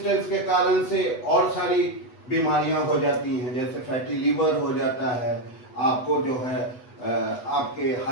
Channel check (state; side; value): late; right; 8.1 ms